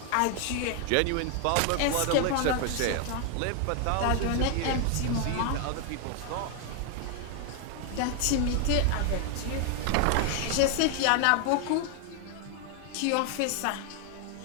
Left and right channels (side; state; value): both; different; correlation 0.00